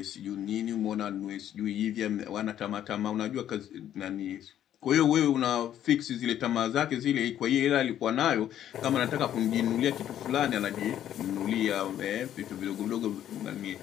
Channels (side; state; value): right; quieter; 11.0 dB